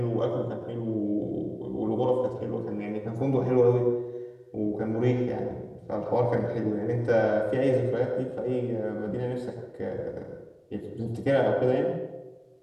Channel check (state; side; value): identical; both; correlation 1.00